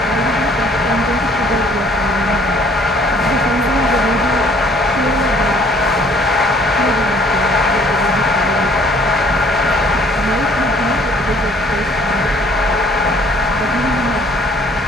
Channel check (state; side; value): normal; both; correlation 0.58